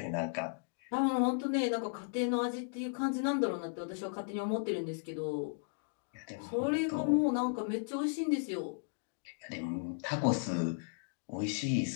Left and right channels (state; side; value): silent; right; digital silence